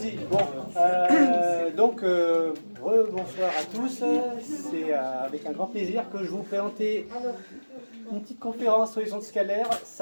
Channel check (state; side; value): inverted; both; correlation -1.00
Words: Bon, bonsoir à tous. C'est avec un grand plaisir que je vais vous présenter une petite conférence sur les ondes scalaires.